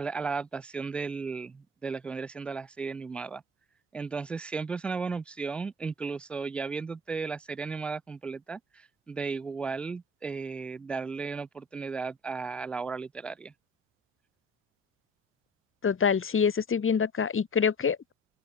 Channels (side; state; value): both; normal; correlation 0.39